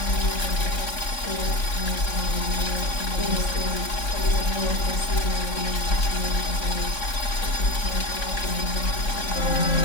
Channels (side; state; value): right; late; 3.6 ms